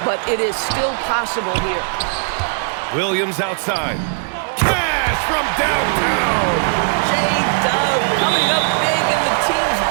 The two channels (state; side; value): silent; left; 67 dB below the other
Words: but it is still possible here. Williams outside. Cash from downtown. J-Dub coming up big in the team's